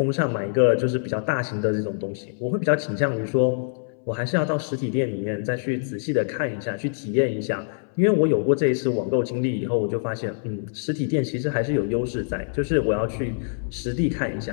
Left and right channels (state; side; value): silent; right; 62 dB below the other